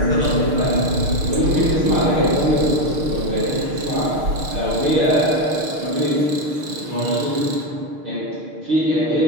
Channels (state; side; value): late; left; 6.6 ms